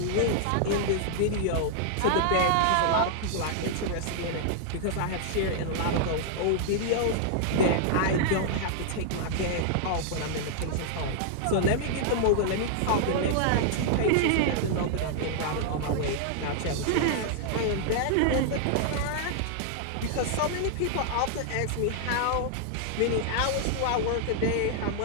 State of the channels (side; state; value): both; different; correlation -0.01